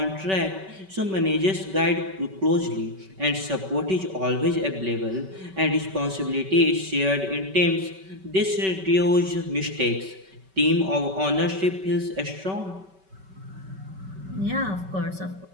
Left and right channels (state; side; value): late; left; 5.2 ms